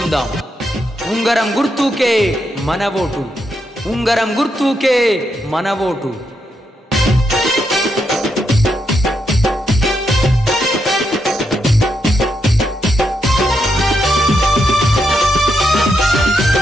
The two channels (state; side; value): normal; both; correlation 0.81